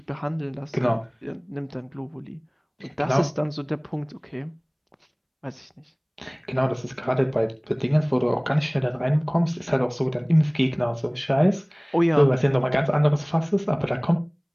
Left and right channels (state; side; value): identical; both; correlation 1.00